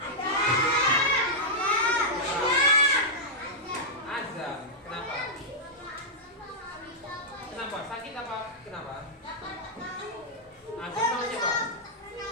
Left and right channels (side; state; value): both; normal; correlation -0.09